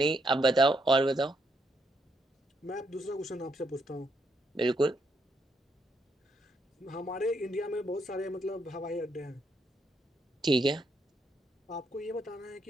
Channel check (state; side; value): normal; both; correlation 0.77